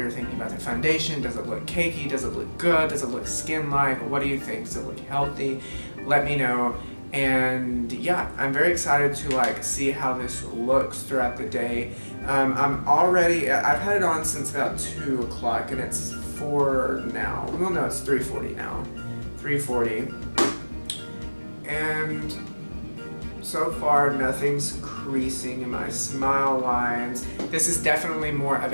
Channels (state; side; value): inverted; both; correlation -1.00